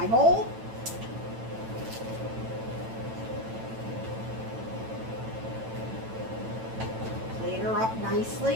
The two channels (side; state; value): left; late; 9.0 ms